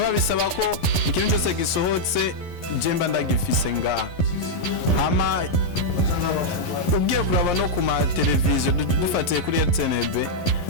bisaba ko ikintu cyose gisohotse jemba ndagifise nga ama ugiye kuraba no ku ma television dufatiye kuri RTNB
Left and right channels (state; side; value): late; right; 11 ms